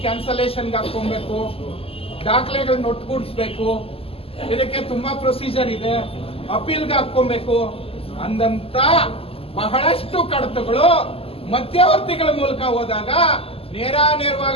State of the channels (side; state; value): right; late; 0.28 ms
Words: ಕ್ಯಾನ್ಸಲೇಷನ್ಗೆ ಹಾಕೊಬೇಕು, ದಾಖಲೆಗಳನ್ನ ಒಟ್ಟುಗೂಡಿಸ್ಬೇಕು, ಇದಕ್ಕೆ ತುಂಬಾ ಪ್ರೊಸೀಜರ್ ಇದೆ, ಅಪೀಲ್ಗೆ ಹಾಕೊಬೇಕು ಅಂದಂತ ಬಹಳಷ್ಟು ಕಡತಗಳು ಮಧ್ಯವರ್ತಿಗಳ ಮೂಲಕ ಹೋದಾಗ